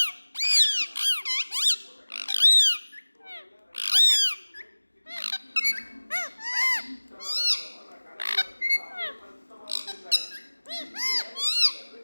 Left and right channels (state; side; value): inverted; both; correlation -1.00